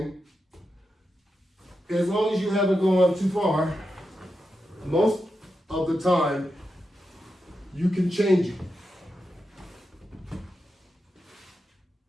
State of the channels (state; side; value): normal; both; correlation 0.88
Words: as long as you haven't gone too far, most of the time, you can change it.